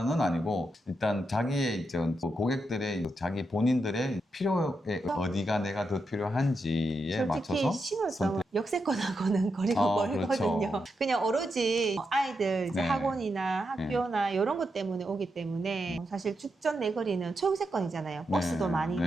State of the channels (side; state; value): both; normal; correlation 0.85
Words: 아니고 일단 자기의 이제 고객들의 자기 본인들의 필요에 어디가 내가 더 필요한지에 솔직히 맞춰서 신월성은 역세권하고는 거리가 멀거든요. 그렇죠. 그냥 오로지 아이들 이제 네. 학원이나 학교나 이런 것 때문에 오기 때문에 사실 죽전 내거리는 초역세권이잖아요. 버스도 네. 많이 네.